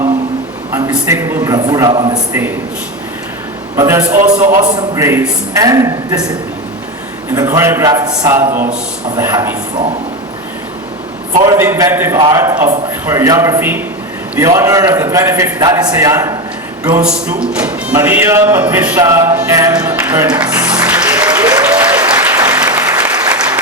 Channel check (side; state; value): both; normal; correlation 0.17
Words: unmistakable bravura on the stage. But there's also awesome grace and discipline in the choreographed salvos of the happy throng. For the inventive art of choreography, the honor of the 25th Dalisayan goes to Maria Patricia M. Bernas.